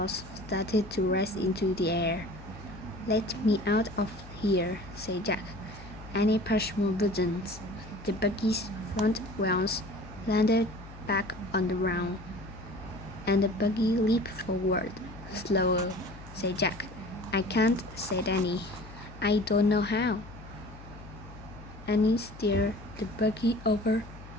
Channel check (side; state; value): left; noise; hum, 17 dB below the sound